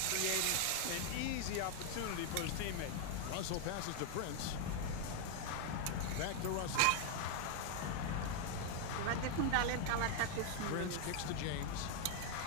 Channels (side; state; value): both; different; correlation 0.00